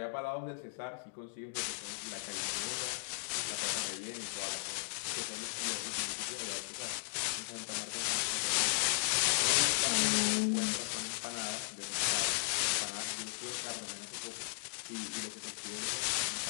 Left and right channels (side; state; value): right; silent; digital silence